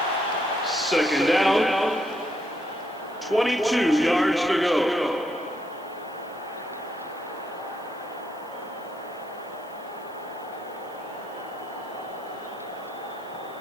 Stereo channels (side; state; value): right; noise; hiss, 27 dB below the sound